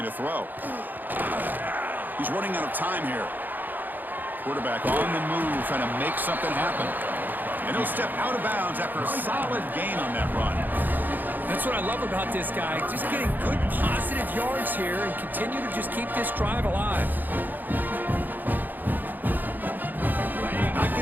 to throw. He's running out of time here. Quarterback on the move, trying to make something happen. And he'll step out of bounds after a solid gain on that run. That's what I love about this guy. Just getting good, positive yards here and continue to just keep this drive alive. Not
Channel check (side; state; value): left; late; 0.087 ms